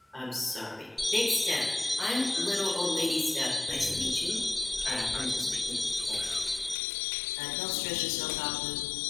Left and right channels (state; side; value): drops out; right; at 6.8 s